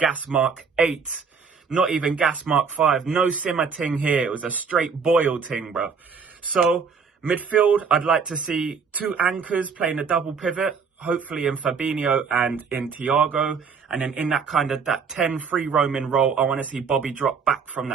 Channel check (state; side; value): quieter; left; 5.7 dB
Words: mark 8. Not even gas mark 5. No simmer ting here. It was a straight boil ting, bro. So, midfield, I'd like to see 2 anchors playing a double pivot. Hopefully in Fabinho and in Thiago. And then in that kind of that 10 free roaming role, I want to see Bobby drop back from